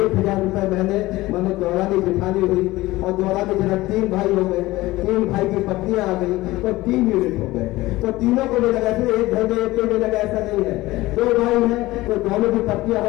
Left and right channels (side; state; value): right; quieter; 18.6 dB